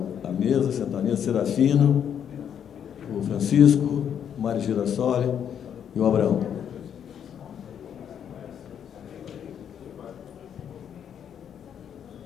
a mesa, sentar a mesa, Serafino, o Francisco, o Mário Girassoli e o Abraão.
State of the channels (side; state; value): right; quieter; 8.7 dB